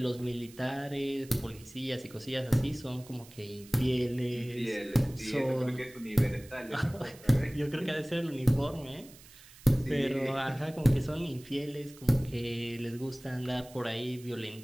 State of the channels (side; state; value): right; noise; hiss, 21 dB below the sound